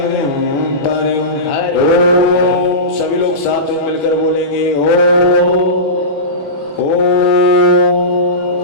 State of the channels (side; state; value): right; late; 20 ms